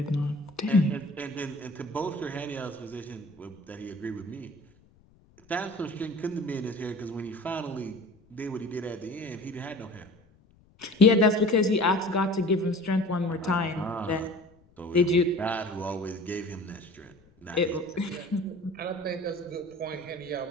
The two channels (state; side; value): noise; left; rumble, 29 dB below the sound